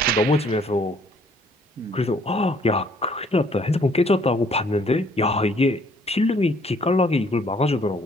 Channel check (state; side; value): normal; both; correlation 0.62